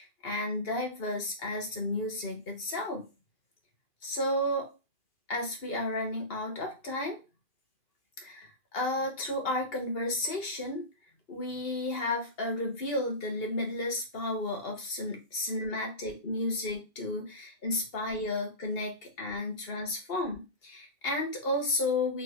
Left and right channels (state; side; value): late; right; 2.8 ms